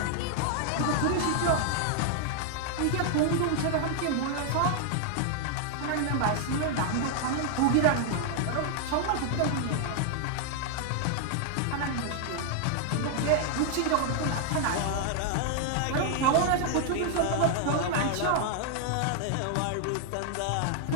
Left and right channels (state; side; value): different; both; correlation 0.00